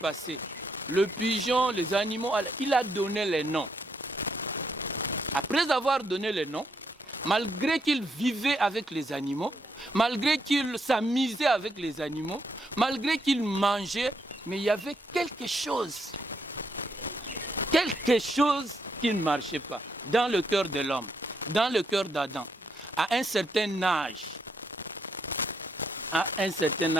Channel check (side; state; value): both; normal; correlation 0.76